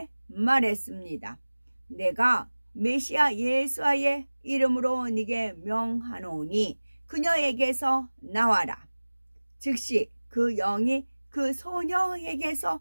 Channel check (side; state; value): both; inverted; correlation -1.00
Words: 말했습니다. 내가 메시아 예수의 이름으로 네게 명하노니 그녀에게서 나와라. 즉시 그 영이 그 소녀에게서